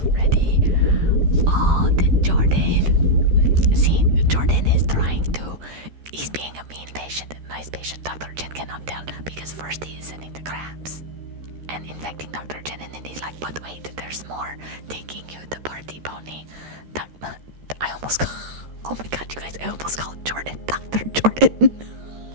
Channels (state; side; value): late; left; 13 ms